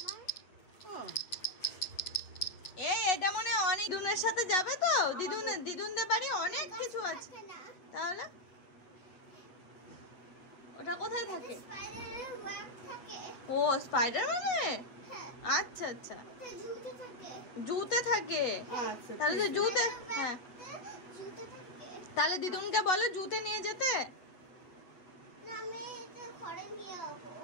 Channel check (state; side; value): late; right; 8.5 ms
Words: ও এটা মনে হয় অনেক দিদুনের সাথে যাবে তো, দিদুনদের বাড়ি অনেক কিছু আছে। থাকে না। তাহলে ওটা কোথায় থাকে? স্পাইডারের ওয়েব থাকে। ও স্পাইডারম্যানে। হ্যাঁ, আচ্ছা আচ্ছা, ওটা জুতে থাকে। জুতে থাকে। আচ্ছা তাহলে তো জুতে, হ্যাঁ জুতে থাকে। তাহলে দিদুনকে বলো জুতে নিয়ে যেতে। না, আমি এটা ঘরে নিয়ে যাবো।